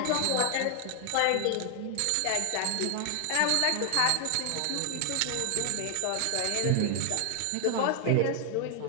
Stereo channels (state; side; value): different; both; correlation 0.00